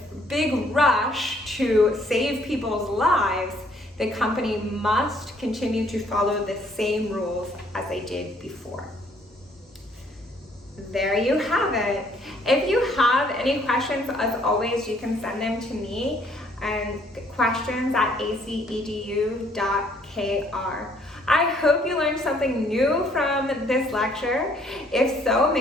big rush to save people's lives, the company must continue to follow the same rules as they did before. There you have it. If you have any questions, as always, you can send them to me and questions@acedu.kr. I hope you learned something new from this lecture. If so,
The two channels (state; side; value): normal; both; correlation 0.64